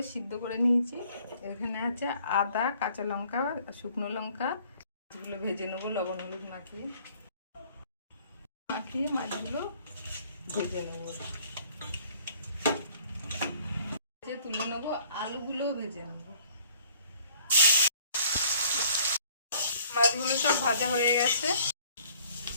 সিদ্ধ করে নিয়েছি, এখানে আছে আদা, কাঁচা লঙ্কা, শুকনো লঙ্কা, মাছগুলো ভেজে নেবো লবণ হলুদ মাখিয়ে মাছগুলো ভেজে নেবো, ভেজে তুলে নেবো, আলুগুলো ভেজে নেবো। মাছগুলো সব ভাজা হয়ে গেছে,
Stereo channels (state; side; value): inverted; both; correlation -0.57